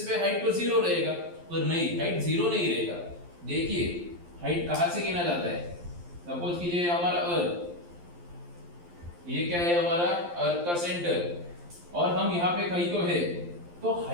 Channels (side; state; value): left; late; 12 ms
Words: पे हाइट तो जीरो रहेगा, पर नहीं, हाइट जीरो नहीं रहेगा। देखिए, हाइट कहाँ से गिना जाता है? सपोज कीजिए हमारा अर्थ, ये क्या है हमारा अर्थ का सेंटर और हम यहाँ पे कहीं तो है, तो